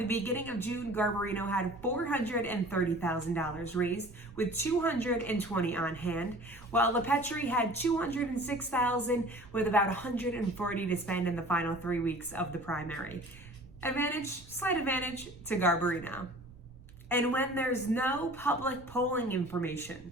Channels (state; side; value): noise; right; rumble, 21 dB below the sound